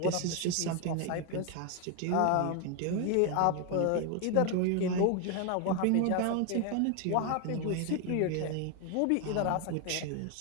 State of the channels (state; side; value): different; both; correlation 0.01